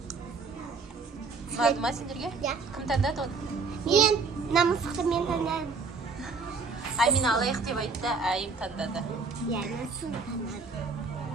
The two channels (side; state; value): left; quieter; 4.4 dB